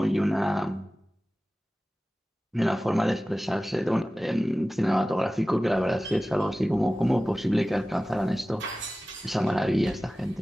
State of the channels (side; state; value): both; normal; correlation 0.96